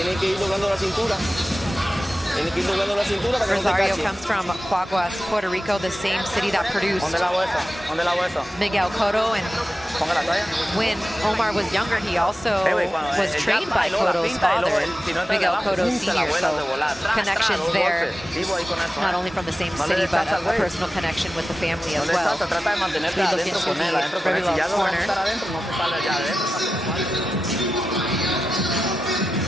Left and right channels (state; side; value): normal; both; correlation 0.93